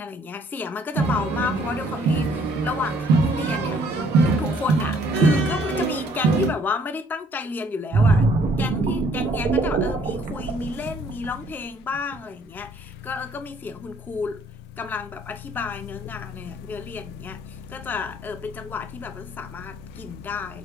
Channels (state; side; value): normal; both; correlation 0.61